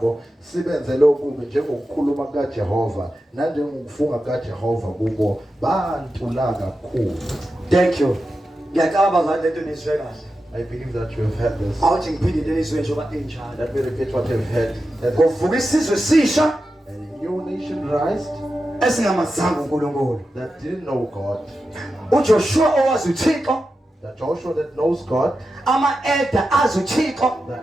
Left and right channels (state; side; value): normal; both; correlation 0.91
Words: sibenzele okubi njengokukhuluma kukaJehova nanjengokufunga kukaJehova kubo bantula kakhulu. Thank you. Ngiyacabanga bazalwane lento nizwe kahle. I believe that you have heard this. Awuthi ngiphinde njengoba enjalo. Let me repeat what you've heard. Kuvuka isizwe sisha. A new ancientized, esingamazanga uNkulunkulu. that didn't know God. uJoshua owazi uThixo, The Joshua that knows God, ama-elder azi uThixo the